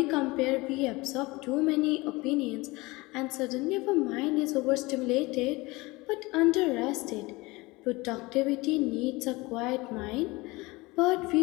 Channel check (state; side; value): quieter; right; 22.7 dB